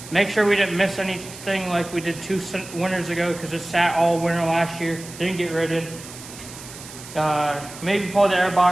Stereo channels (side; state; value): right; noise; hiss, 15 dB below the sound